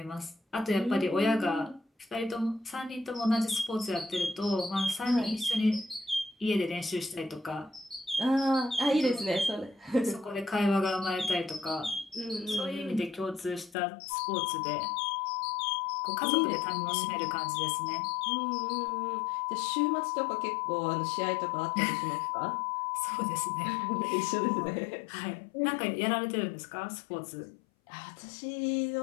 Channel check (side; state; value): right; drops out; at 13.8 s